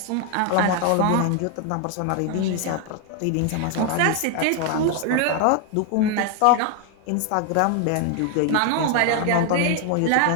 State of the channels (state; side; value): different; both; correlation 0.01